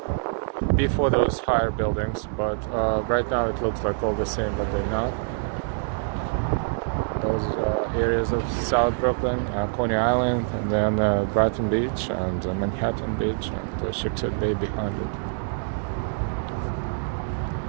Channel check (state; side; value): silent; left; digital silence